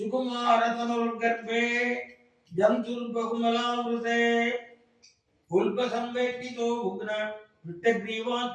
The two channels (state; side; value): identical; both; correlation 1.00